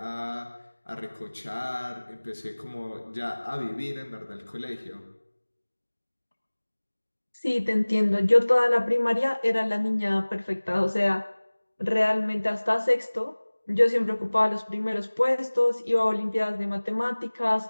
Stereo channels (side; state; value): both; inverted; correlation -1.00